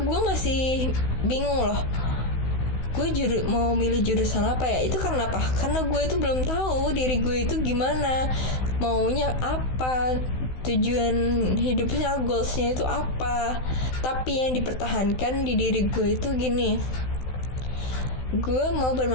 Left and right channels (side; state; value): right; late; 16 ms